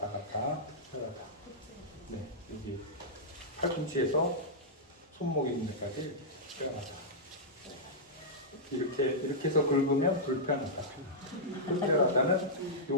갔다 특별하다. 네, 여기 팔꿈치에서 손목 있는 데까지 특별하다. 이렇게 해서 긁으면 불편하다. 특별하다는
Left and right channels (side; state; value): both; normal; correlation -0.11